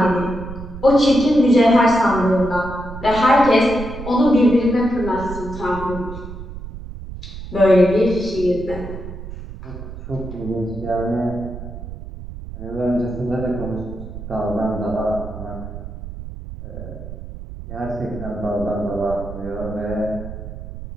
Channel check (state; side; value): noise; right; rumble, 11 dB below the sound